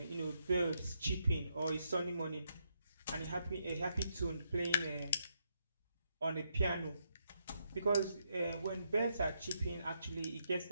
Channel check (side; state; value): both; inverted; correlation -0.79